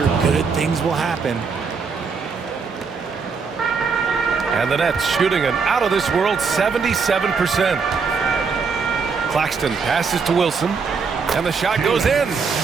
good things will happen. And the Nets shooting an out-of-this-world 77%. Claxton passes to Wilson. And the shot goes in.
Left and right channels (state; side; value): quieter; left; 5.3 dB